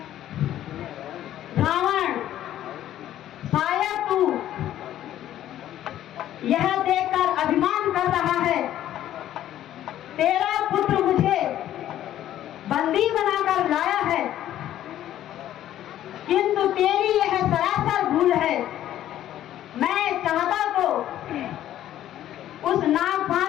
रावण, शायद तू यह देखकर अभिमान कर रहा है तेरा पुत्र मुझे बंदी बनाकर लाया है, किंतु तेरी यह सरासर भूल है। मैं चाहता तो उस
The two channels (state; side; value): quieter; right; 12.3 dB